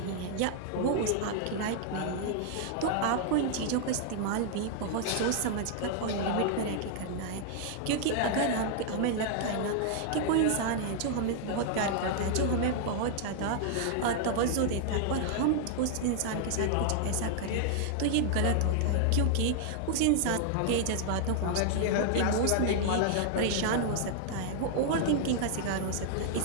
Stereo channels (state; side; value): different; both; correlation 0.00